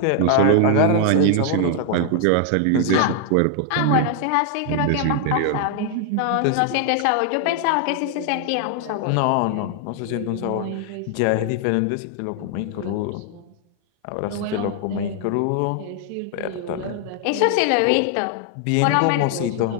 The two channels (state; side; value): different; both; correlation 0.00